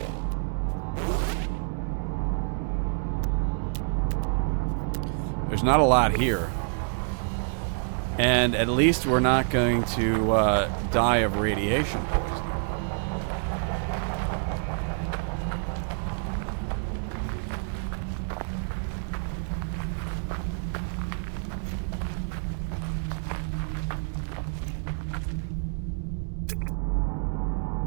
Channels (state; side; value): silent; left; 60 dB below the other